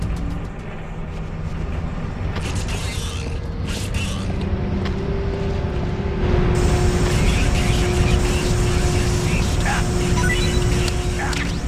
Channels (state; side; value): identical; both; correlation 1.00